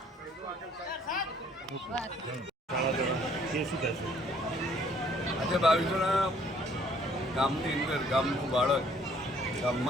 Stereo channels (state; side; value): normal; both; correlation 0.60